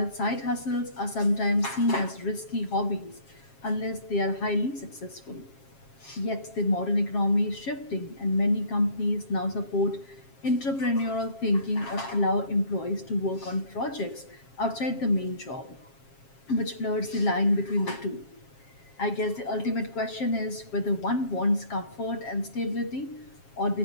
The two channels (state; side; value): late; right; 7.4 ms